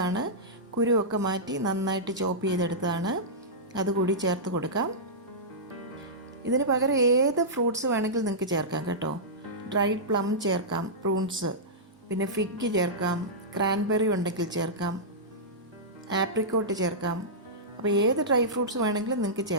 ആണ്, കുരുവൊക്കെ മാറ്റി നന്നായിട്ട് ചോപ്പ് ചെയ്തെടുത്തതാണ്, അതുകൂടി ചേർത്ത് കൊടുക്കാം. ഇതിന് പകരം ഏത് ഫ്രൂട്ട്സ് വേണമെങ്കിലും നിങ്ങൾക്ക് ചേർക്കാം കേട്ടോ. ഡ്രൈഡ് പ്ലം ചേർക്കാം, പ്രൂൺസ്, പിന്നെ ഫിഗ് ചേർക്കാം, ക്രാൻബെറി ഉണ്ടെങ്കിൽ ചേർക്കാം, ആപ്രിക്കോട്ട് ചേർക്കാം. അപ്പോൾ ഏത് ഡ്രൈ ഫ്രൂട്ട്സ് വേണമെങ്കിലും നിങ്ങൾക്ക്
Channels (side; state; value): both; normal; correlation -0.14